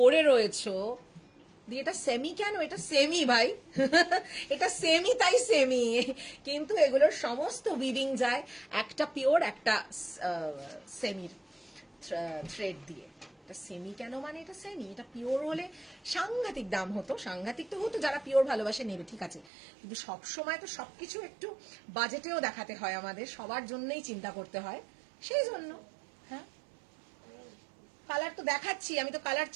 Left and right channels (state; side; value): drops out; left; at 19.5 s